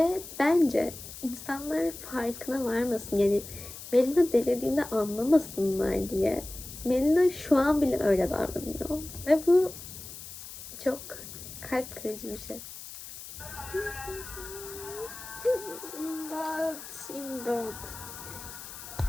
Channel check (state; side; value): noise; left; hiss, 13 dB below the sound